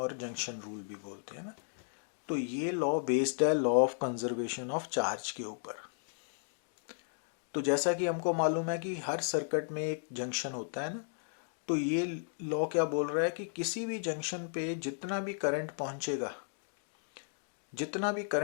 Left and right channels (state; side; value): silent; right; digital silence